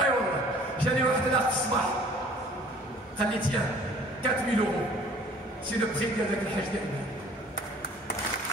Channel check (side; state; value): both; normal; correlation 0.52